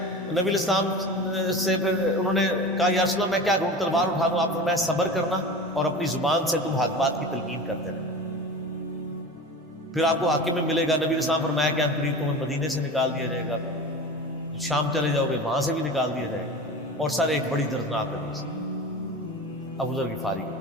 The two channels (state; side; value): normal; both; correlation 0.32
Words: نبی علیہ السلام سے پھر انہوں نے کہا یا رسول اللہ میں کیا کروں, تلوار اٹھا لوں؟ آپ نے میں صبر کرنا اور اپنی زبان سے تم حق بات کی تلقین کرتے رہے, پھر آپ کو حاکم میں ملے گا. نبی علیہ السلام فرمایا کہ قریب تمہیں مدینے سے نکال دیا جائے گا, شام چلے جاؤ گے وہاں سے بھی نکال دیا جائے گا. اور سر ایک بڑی دردناک حدیث ابو ذر غفاری